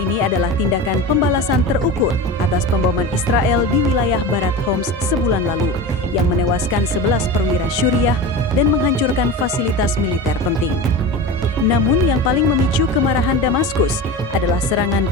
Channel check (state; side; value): normal; both; correlation 0.28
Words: adalah tindakan pembalasan terukur atas pemboman Israel di wilayah barat Homs sebulan lalu, yang menewaskan 11 perwira Syuriah dan menghancurkan fasilitas militer penting. Namun yang paling memicu kemarahan Damaskus adalah serangan